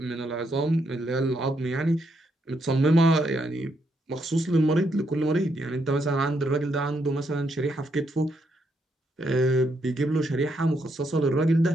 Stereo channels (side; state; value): both; normal; correlation 0.77